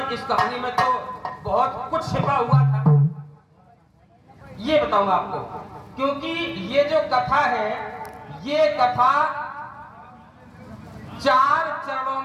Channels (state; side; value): identical; both; correlation 1.00